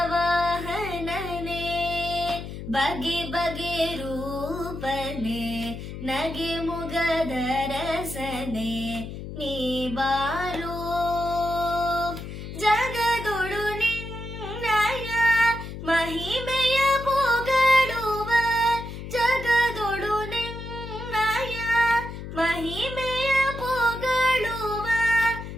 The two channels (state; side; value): noise; left; hum, 9 dB below the sound